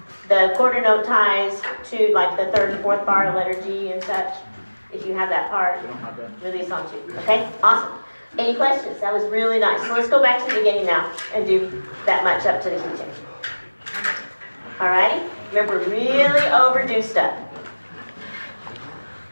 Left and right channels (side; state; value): both; inverted; correlation -1.00